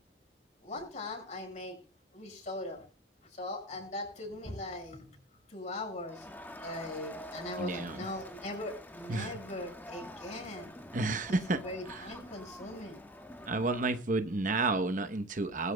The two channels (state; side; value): normal; both; correlation 0.34